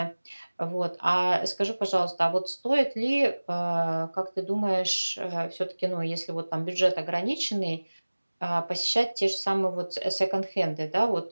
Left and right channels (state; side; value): inverted; both; correlation -1.00